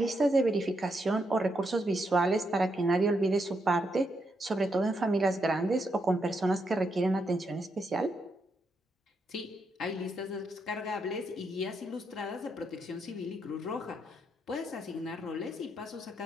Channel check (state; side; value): normal; both; correlation 0.80